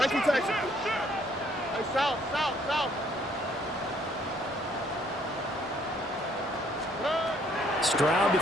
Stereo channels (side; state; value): both; normal; correlation 0.65